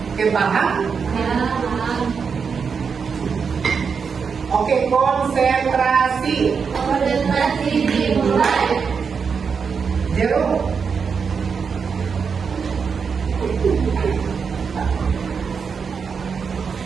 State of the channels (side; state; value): left; quieter; 5.9 dB